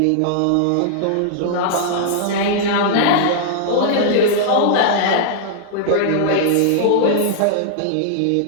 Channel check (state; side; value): different; both; correlation -0.01